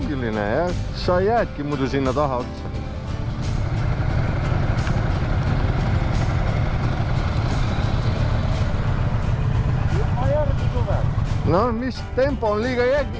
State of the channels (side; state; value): both; identical; correlation 1.00